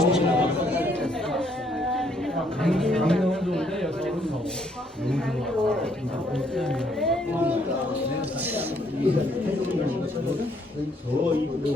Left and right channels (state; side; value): normal; both; correlation 0.68